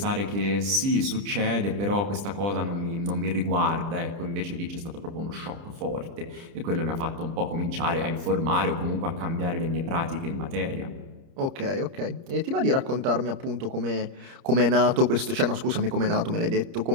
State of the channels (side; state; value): left; late; 30 ms